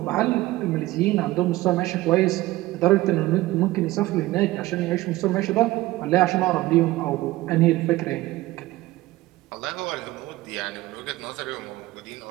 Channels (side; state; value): left; quieter; 18.0 dB